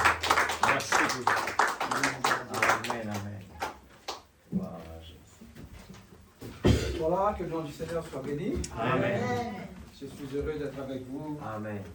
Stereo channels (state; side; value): identical; both; correlation 1.00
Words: Merci. Amen, amen. Wow. Voilà, que le nom du Seigneur soit béni. Amen. Je suis heureux d'être avec vous Amen.